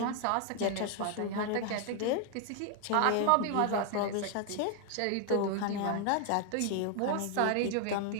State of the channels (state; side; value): different; both; correlation 0.01